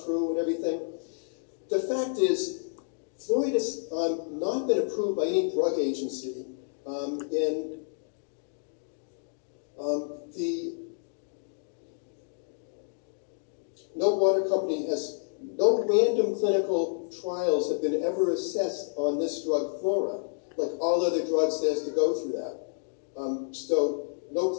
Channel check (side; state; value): right; silent; digital silence